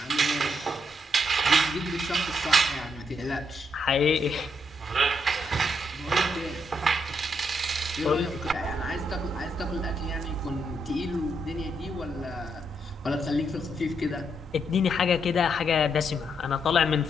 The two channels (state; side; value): normal; both; correlation 0.78